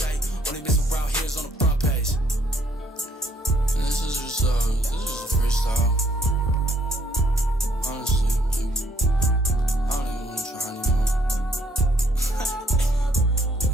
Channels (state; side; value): normal; both; correlation 0.66